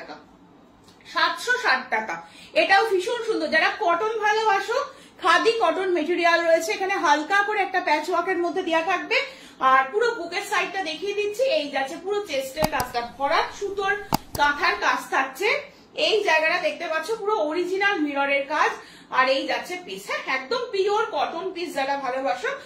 760 টাকা। এটাও ভীষণ সুন্দর। যারা কটন ভালোবাসো, খাদি কটন মেটেরিয়াল রয়েছে, এখানে হালকা করে একটা প্যাচ ওয়ার্কের মধ্যে দেওয়া থাকবে। আর পুরো বুকের সাইডটা দেখিয়ে দিচ্ছি, এই যাচ্ছে পুরো চেস্টের কাজটা, ভরাট সুতোর কাঁথার কাজ থাকছে। এই জায়গাটা দেখতে পাচ্ছ পুরো অরিজিনাল মিররের কাজ। আর এই যাচ্ছে পিস, হ্যাঁ একদম পিওর কটন পিস। যারা ভালোবাসো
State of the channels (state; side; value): identical; both; correlation 1.00